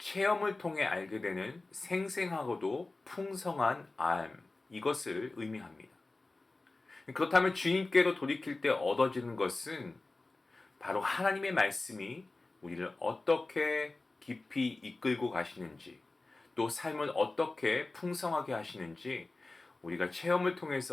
통해 알게 되는 생생하고도 풍성한 알, 이것을 의미합니다. 그렇다면 주님께로 돌이킬 때 얻어지는 것은 바로 하나님의 말씀이 우리를 어떻게 깊이 이끌고 가시는지, 또 삶을 어떻게 풍성하게 하시는지 우리가 체험을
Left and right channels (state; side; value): quieter; right; 3.2 dB